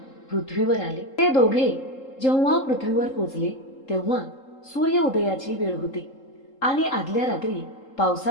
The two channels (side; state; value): right; late; 3.8 ms